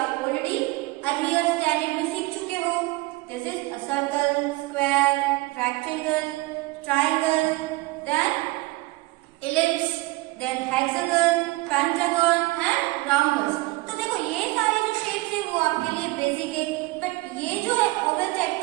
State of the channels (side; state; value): left; quieter; 21.5 dB